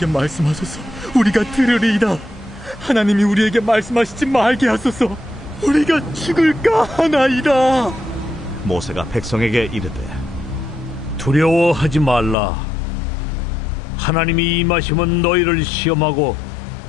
말씀하소서. 우리가 들으리이다. 하나님이 우리에게 말씀하시지 말게 하소서. 우리가 죽을까 하나이다. 모세가 백성에게 이르되 두려워하지 말라. 하나님이 임하시면 너희를 시험하고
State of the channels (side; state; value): right; drops out; at 12.4 s